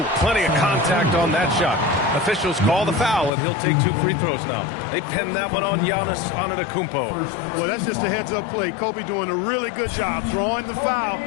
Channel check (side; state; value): right; drops out; at 3.3 s